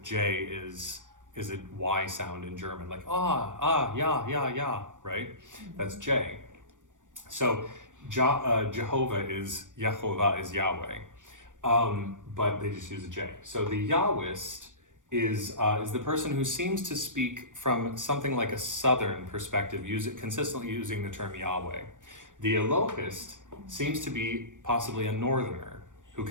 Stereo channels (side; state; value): left; late; 0.87 ms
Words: J is a Y sound in German, like yeah, right? That's J. So Jehovah is Yehovah is Yahweh, but they just use a J. So the Yahwist is the person who seems to speak from something like a southern perspective, consistently using the term Yahweh. The Elohist seems to be possibly a northerner who